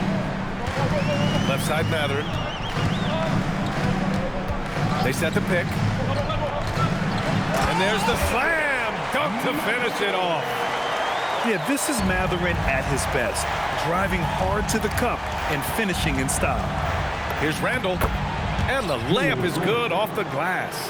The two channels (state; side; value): identical; both; correlation 1.00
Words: Left side Mathurin. They set the pick. And there's the slam dunk to finish it off. Yeah, this is Mathurin at his best. Driving hard to the cup and finishing in style. Here's Randall. And the layup is good off the glass.